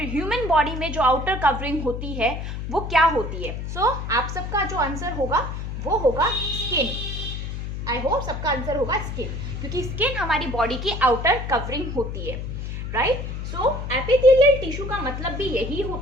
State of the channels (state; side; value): noise; left; hum, 5 dB below the sound